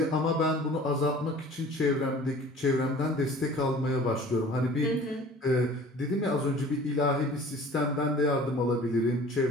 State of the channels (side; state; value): both; normal; correlation 0.46